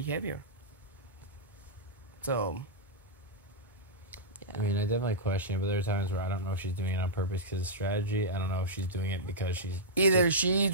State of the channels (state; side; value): normal; both; correlation -0.12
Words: So I mean, I definitely question it, but there are times where I don't know if she's doing it on purpose because of strategy. I don't know if she's doing it because she's... Either she